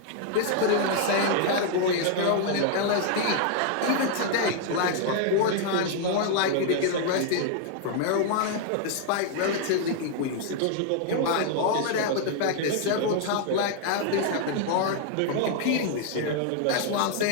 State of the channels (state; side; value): different; both; correlation 0.00